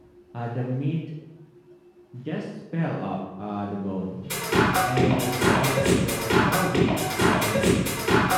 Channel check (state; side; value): identical; both; correlation 1.00